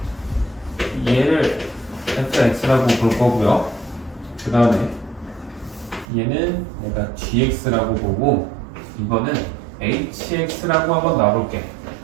얘를 fx라고 볼 거고요. 그 다음에 얘는 내가 gx라고 보고 이거는 hx라고 한번 놔볼게.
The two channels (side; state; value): left; drops out; at 6.1 s